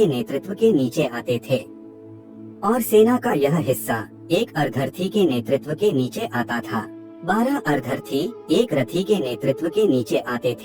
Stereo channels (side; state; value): both; identical; correlation 1.00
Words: नेतृत्व के नीचे आते थे और सेना का यह हिस्सा एक अर्धरथी के नेतृत्व के नीचे आता था। 12 अर्धरथी एक रथी के नेतृत्व के नीचे आते